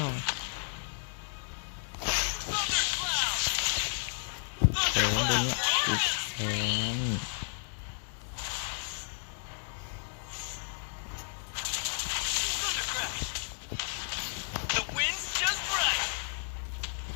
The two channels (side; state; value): right; silent; digital silence